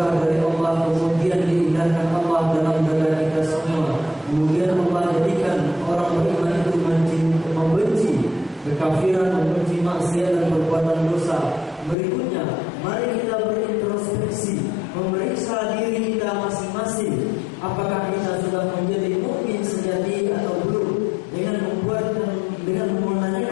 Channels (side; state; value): right; drops out; at 12.0 s